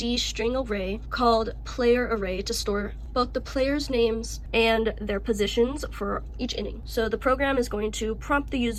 string array called player array to store both the players' names and their positions for each inning. So the program is going to prompt the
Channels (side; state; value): both; identical; correlation 1.00